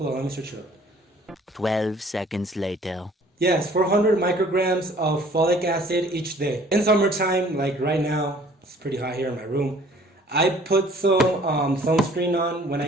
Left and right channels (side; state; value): both; normal; correlation 0.54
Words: on, let me search it up. 12 seconds later. Yes, 400 micrograms of folic acid each day. In summertime, like right now, it's pretty hot here in my room. I put some sunscreen on when